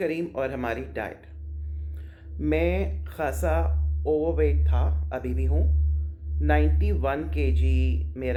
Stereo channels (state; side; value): identical; both; correlation 1.00